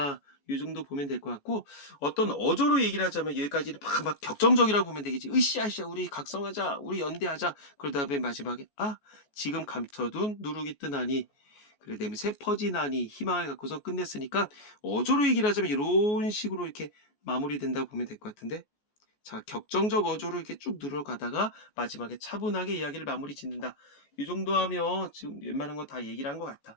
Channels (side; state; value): right; late; 14 ms